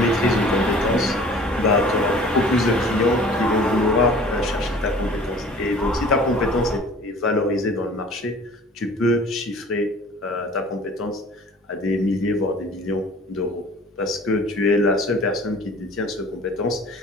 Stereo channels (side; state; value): both; normal; correlation 0.47